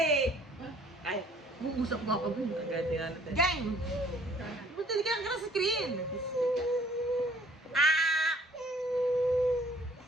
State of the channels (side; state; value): both; normal; correlation 0.58